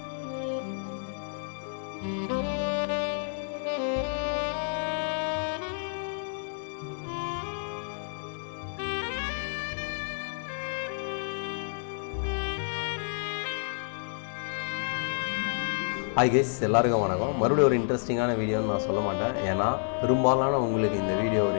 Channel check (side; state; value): right; silent; 58 dB below the other